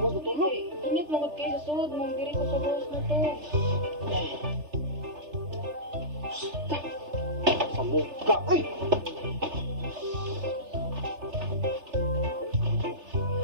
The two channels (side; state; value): left; late; 3.3 ms